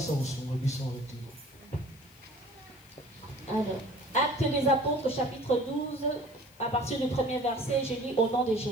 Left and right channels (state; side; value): noise; left; hiss, 26 dB below the sound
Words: Actes des Apôtres, chapitre 12, à partir du premier verset, je lis au nom de